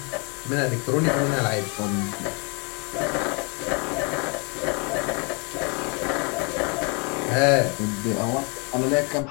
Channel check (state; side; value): quieter; right; 33.1 dB